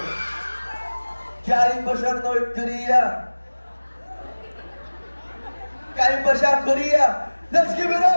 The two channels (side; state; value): both; inverted; correlation -1.00